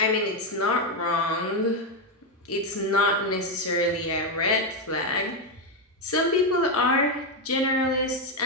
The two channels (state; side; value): normal; both; correlation 0.06